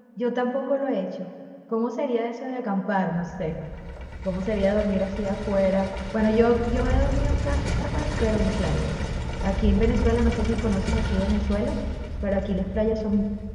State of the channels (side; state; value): both; identical; correlation 1.00